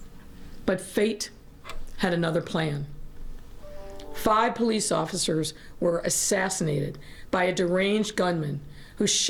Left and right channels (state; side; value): identical; both; correlation 1.00